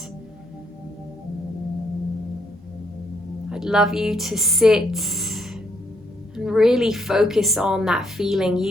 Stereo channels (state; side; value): normal; both; correlation 0.73